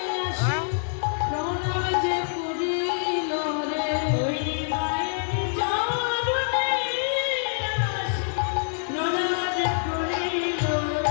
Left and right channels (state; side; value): silent; right; 61 dB below the other